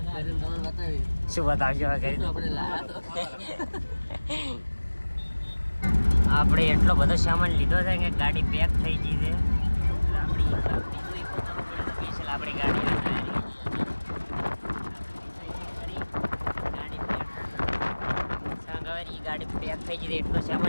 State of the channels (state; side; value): inverted; both; correlation -1.00